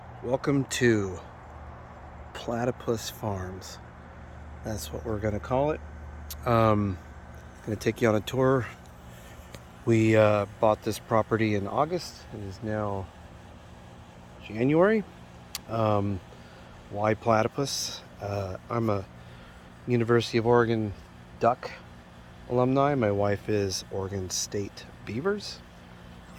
welcome to Platypus Farms. That's what we're gonna call it. Gonna take you on a tour. We bought this property in August. It is now January. Why platypus? I'm a University of Oregon duck alumni. My wife is Oregon State Beavers.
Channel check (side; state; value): both; identical; correlation 1.00